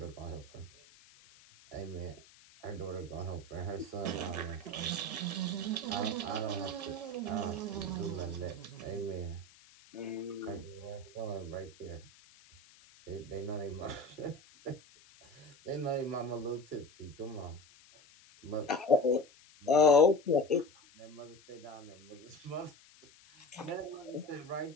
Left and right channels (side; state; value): left; noise; hiss, 24 dB below the sound